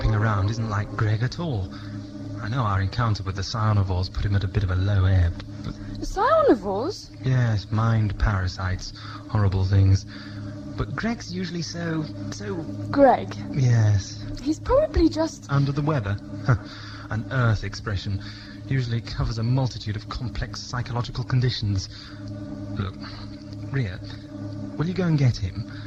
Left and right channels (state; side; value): identical; both; correlation 1.00